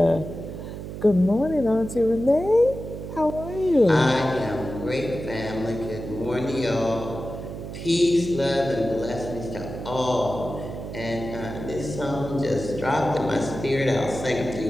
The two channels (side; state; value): right; noise; hum, 9 dB below the sound